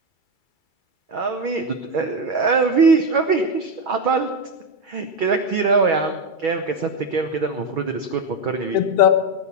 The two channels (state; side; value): late; right; 2.3 ms